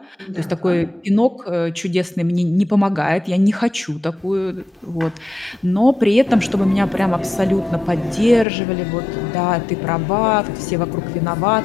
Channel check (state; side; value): drops out; right; at 8.5 s